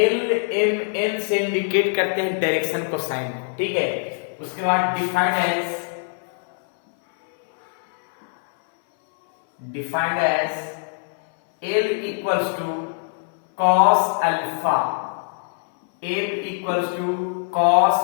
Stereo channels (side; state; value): right; silent; 61 dB below the other